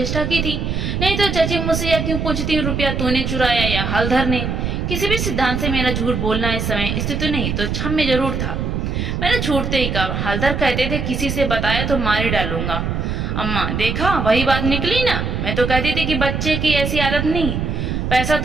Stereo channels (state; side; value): noise; right; rumble, 2 dB below the sound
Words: की थी। नहीं तो चची मुझसे या क्यों पूछती, रुपया तूने चुराया या हलधर ने? किसी भी सिद्धांत से मेरा झूठ बोलना इस समय स्थिति नहीं तो क्षम्य जरूर था। मैंने छूटते ही कहा, हलधर कहते थे किसी से बताया तो मार ही डालूंगा। अम्मा, देखा वही बात निकली ना। मैं तो कहती थी कि बच्चे की ऐसी आदत नहीं। पैसा